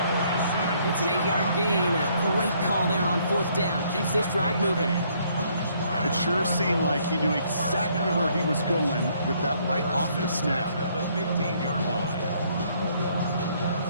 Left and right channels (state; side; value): inverted; both; correlation -0.67